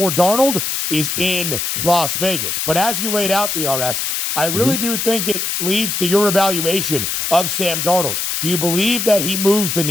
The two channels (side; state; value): left; noise; hiss, 1 dB below the sound